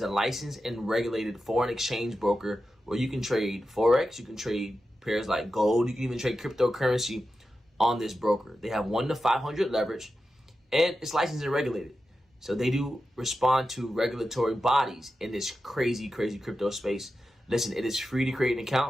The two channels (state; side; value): normal; both; correlation 0.91